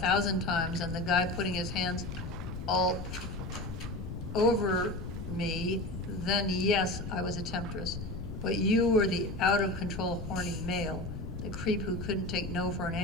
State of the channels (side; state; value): left; noise; rumble, 7 dB below the sound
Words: times and the guy putting his hands all over me, then yes, I was a temptress. But you were the out-of-control horny male, the creep who couldn't take no for an